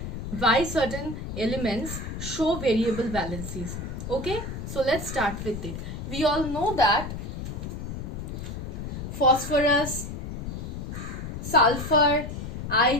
why certain elements show variable valencies. Okay, so let's start with it. We all know that phosphorus, sulfur,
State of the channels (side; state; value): left; noise; rumble, 6 dB below the sound